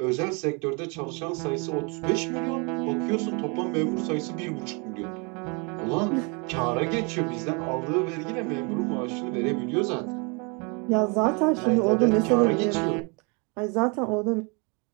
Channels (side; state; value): left; quieter; 32.4 dB